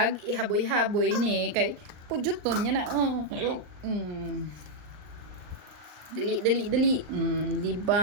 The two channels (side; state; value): left; late; 39 ms